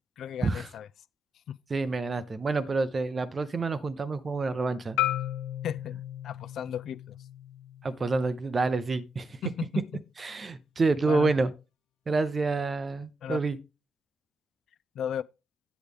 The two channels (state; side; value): normal; both; correlation 0.81